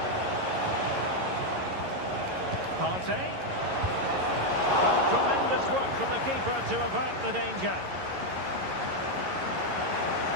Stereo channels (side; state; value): left; late; 11 ms